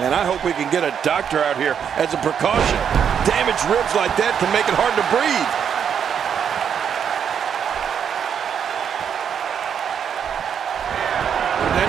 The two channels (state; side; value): quieter; left; 7.9 dB